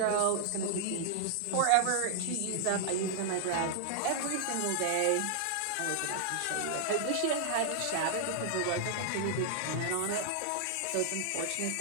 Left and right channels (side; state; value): both; different; correlation -0.01